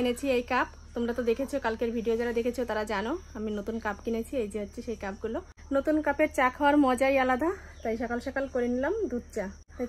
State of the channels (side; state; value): both; identical; correlation 1.00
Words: এনেছি এই কাপ। তোমরা তো দেখেছো, কালকের ভিডিও যারা দেখেছো তারা জানো আমি নতুন কাপ কিনেছি। এই যে হচ্ছে সেই কাপগুলো। নতুন কাপের চা খাওয়ার মজাই আলাদা, তাই সকাল সকাল করে নিলাম দুধ চা। তাই